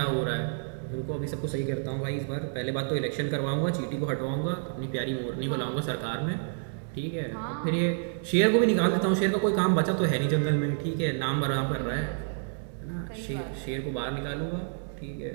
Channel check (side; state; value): left; silent; digital silence